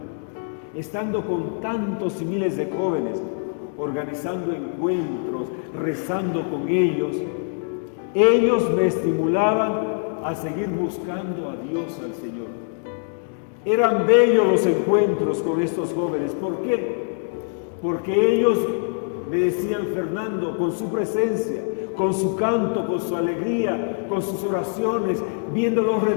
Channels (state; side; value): silent; right; 63 dB below the other